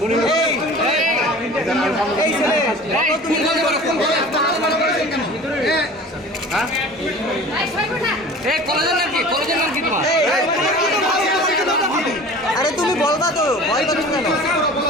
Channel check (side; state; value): both; normal; correlation 0.41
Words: এই এই ছেলে বলো তুমি কোন কলেজে? এই কলেজের নাম কি? কলেজের নাম কি তোমার? আরে তুমি বলবা তো, ভয় পাচ্ছ কেন?